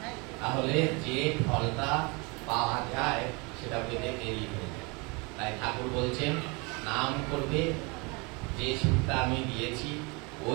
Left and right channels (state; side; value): quieter; left; 29.2 dB